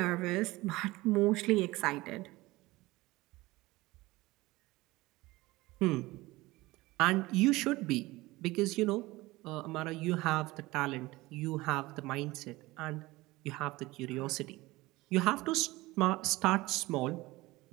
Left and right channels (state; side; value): quieter; left; 20.1 dB